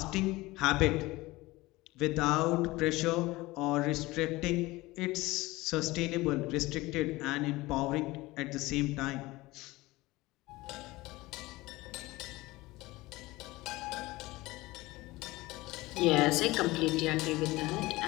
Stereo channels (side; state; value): right; quieter; 20.1 dB